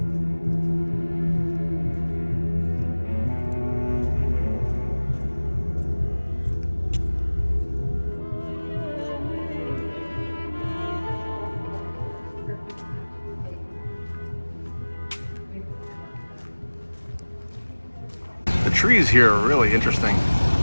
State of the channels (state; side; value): inverted; both; correlation -1.00